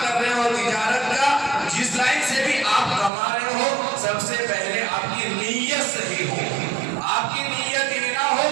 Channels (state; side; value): drops out; left; at 3.1 s